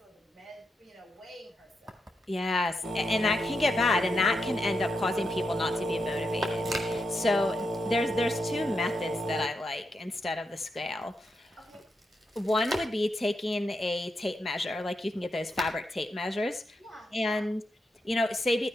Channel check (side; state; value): both; normal; correlation 0.84